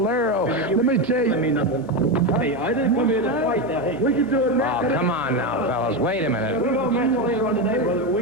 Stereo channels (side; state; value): both; normal; correlation 0.12